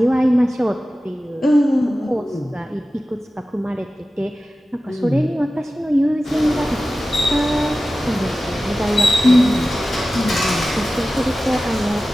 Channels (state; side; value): normal; both; correlation 0.95